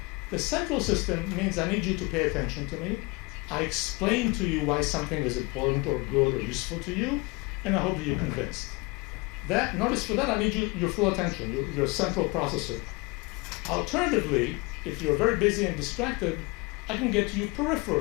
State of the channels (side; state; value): right; quieter; 26.8 dB